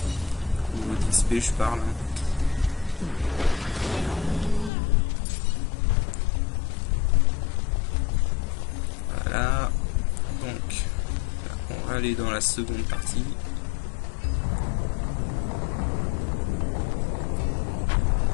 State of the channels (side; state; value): right; drops out; at 4.7 s